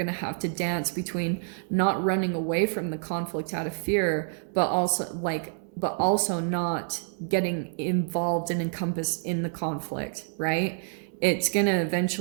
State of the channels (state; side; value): silent; left; digital silence